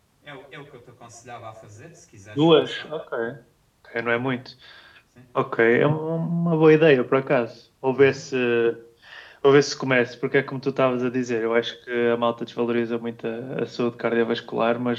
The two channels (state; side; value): identical; both; correlation 1.00